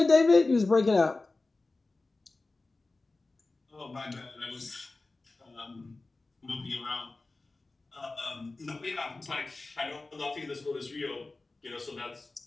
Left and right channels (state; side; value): quieter; right; 3.3 dB